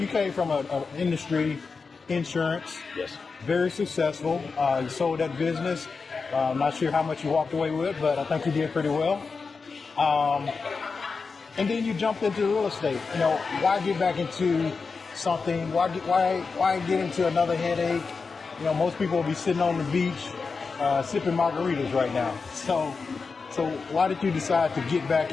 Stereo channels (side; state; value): right; quieter; 4.7 dB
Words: came from an industry, insurance. Yes. Very successful. You sold that business. I'm not sure how much you walked away with, but I think you did pretty well. And then you jumped into real estate. Why get back into something? Why get into another headache? Most people will be sitting on the beach sipping margaritas right now. So why did you decide to get back